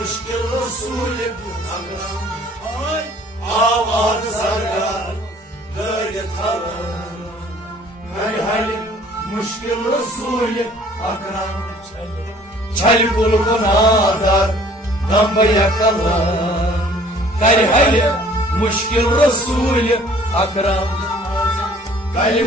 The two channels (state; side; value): normal; both; correlation 0.54